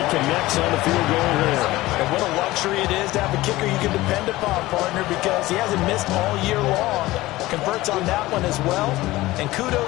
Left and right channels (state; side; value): quieter; right; 18.1 dB